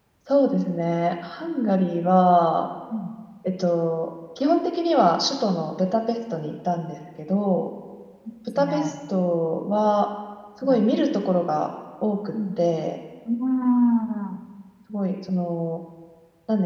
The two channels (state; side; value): identical; both; correlation 1.00